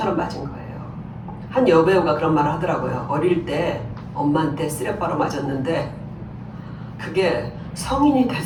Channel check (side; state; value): both; identical; correlation 1.00